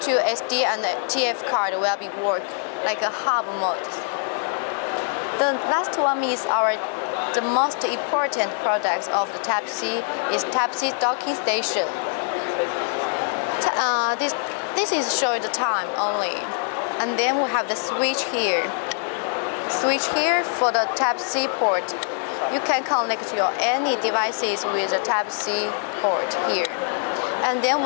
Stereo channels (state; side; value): silent; right; 63 dB below the other